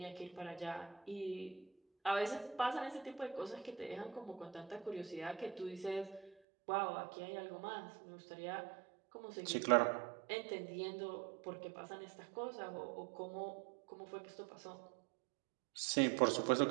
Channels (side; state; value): left; drops out; at 6.4 s